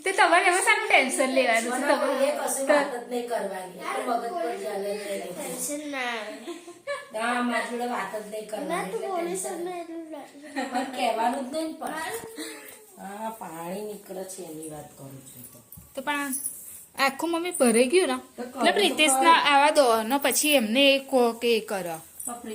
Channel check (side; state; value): both; identical; correlation 1.00